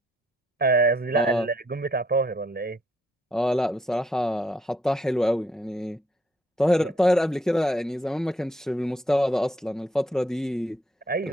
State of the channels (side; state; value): both; normal; correlation 0.70